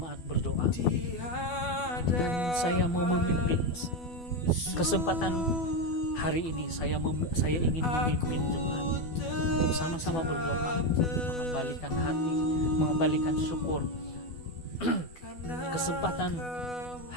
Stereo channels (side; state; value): right; late; 12 ms